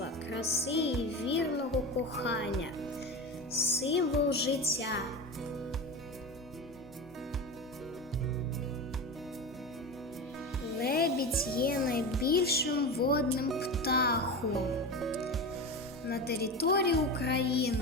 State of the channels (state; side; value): normal; both; correlation 0.25